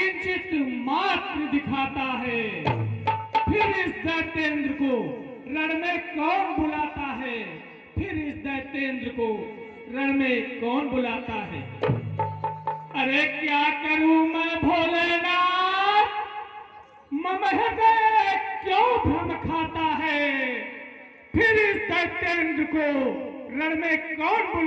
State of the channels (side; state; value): both; identical; correlation 1.00